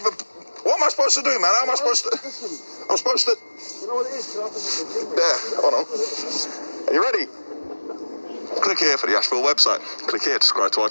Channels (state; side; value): inverted; both; correlation -1.00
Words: What am I supposed to do, man? How am I supposed to... I'm supposed to... You know what it is? There, hold on. Are you ready? Click here for the Asheville website. Click here to subscribe to our